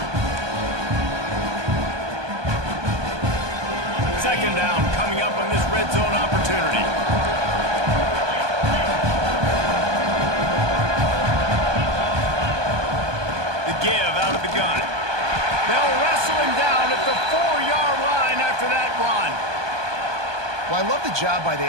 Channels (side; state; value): left; late; 1.2 ms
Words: Second down coming up on this red zone opportunity. The give out of the gun. They'll wrestle him down at the 4-yard line after that run. Well, I love the job by